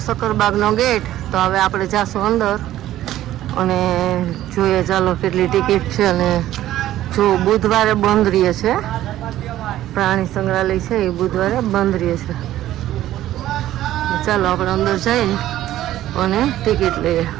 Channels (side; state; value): left; quieter; 13.7 dB